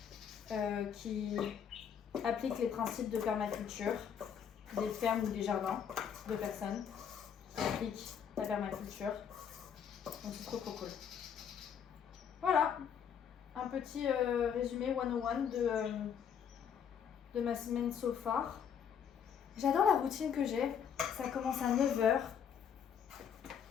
qui appliquent les principes de permaculture, des fermes ou des jardins de personnes qui appliquent la permaculture. Donc c'est trop cool. Voilà, un petit résumé 101 de ma semaine so far. J'adore la routine que j'ai, ça commence à 9h.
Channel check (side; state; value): right; quieter; 7.9 dB